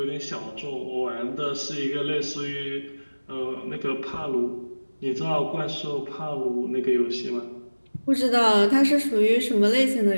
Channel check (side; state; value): both; inverted; correlation -1.00